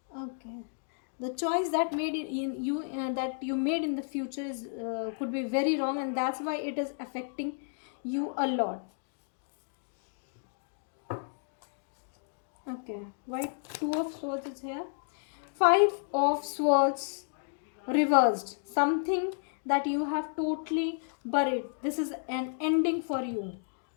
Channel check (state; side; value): silent; right; digital silence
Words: Okay, the choice that made it in you that you made in the future is could be very wrong, and that's why it is affecting you a lot. Okay, white two of swords is here, five of swords reversed, something that you have totally buried. This is an ending for you,